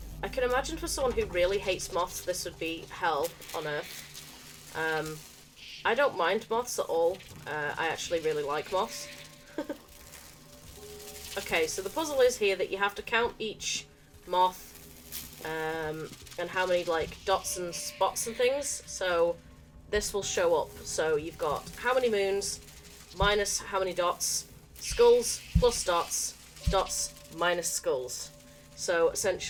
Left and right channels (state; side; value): identical; both; correlation 1.00